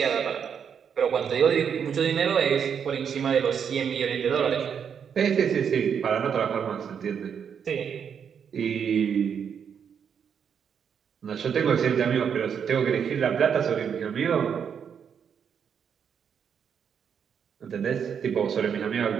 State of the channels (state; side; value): quieter; left; 7.4 dB